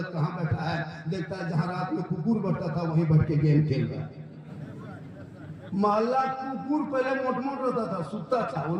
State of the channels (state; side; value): identical; both; correlation 1.00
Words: कहाँ बैठा है, देखता है जहाँ रात में कुकुर बैठता था वहीं बैठ के गेम खेल रहा है। मोहल्ला कुकुर पहले मोट रहता था, सुतता था, वो